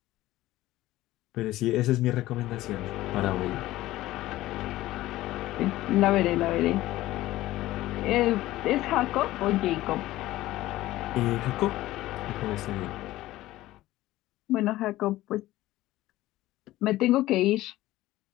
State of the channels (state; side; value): quieter; right; 16.3 dB